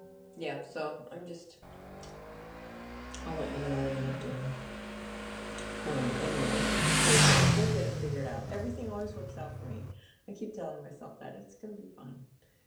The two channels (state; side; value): identical; both; correlation 1.00